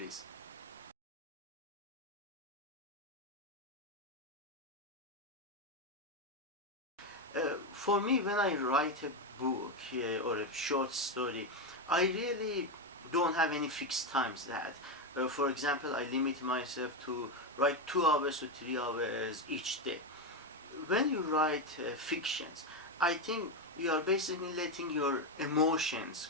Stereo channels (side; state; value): both; normal; correlation 0.09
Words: For me, when I write a book or a short story, I really don't have any fixed times that. For example, I limit myself to write 2 hours to 3 hours each day. When you write fictions, I think you are basically letting your emotions